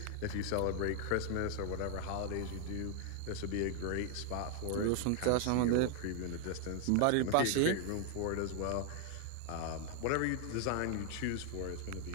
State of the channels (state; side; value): different; both; correlation 0.00